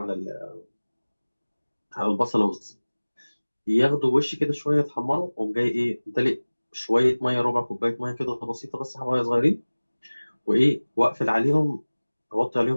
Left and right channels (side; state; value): both; inverted; correlation -1.00